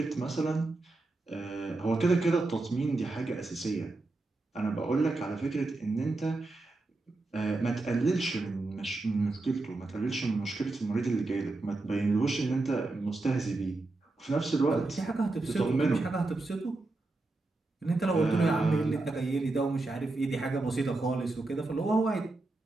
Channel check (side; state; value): left; quieter; 3.2 dB